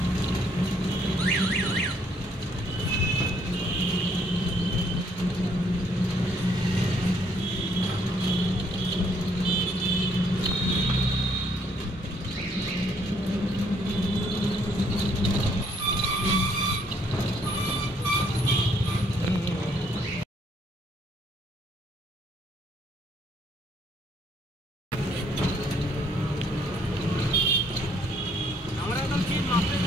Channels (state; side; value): normal; both; correlation 0.67